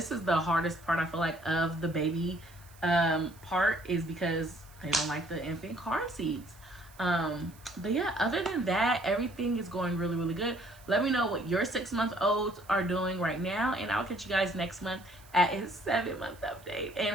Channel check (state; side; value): noise; right; hiss, 25 dB below the sound